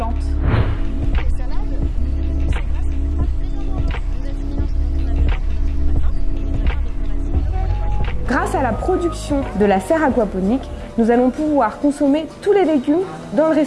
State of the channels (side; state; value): both; identical; correlation 1.00